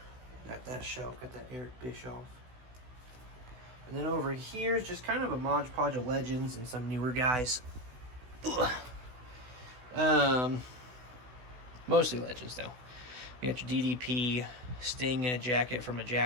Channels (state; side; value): late; left; 16 ms